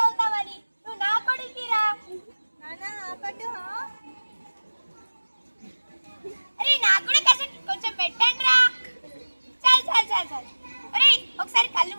అవుతావని. నువ్వు నా కొడుకి రా. నాన్న ఆపడు. అరే నాకు కూడా కొంచెం పెట్టండి రా. చల్ చల్ చల్ చల్. అరే ఒకసారి కళ్ళు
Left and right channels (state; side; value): inverted; both; correlation -1.00